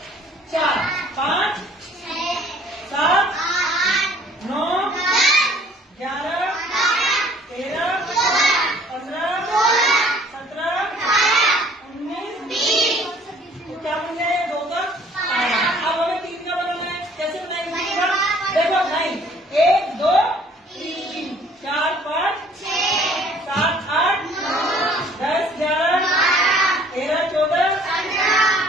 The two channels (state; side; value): normal; both; correlation 0.56